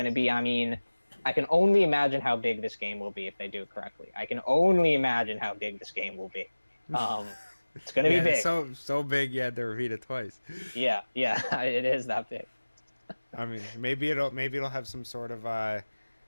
to be, I mean, I can only imagine how big this game will be if they do it correctly. I can only imagine how big this game will be. It's going to be big. So big you had to repeat it twice. Yeah, it is that big. I mean, maybe it'll have some sort of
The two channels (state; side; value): inverted; both; correlation -1.00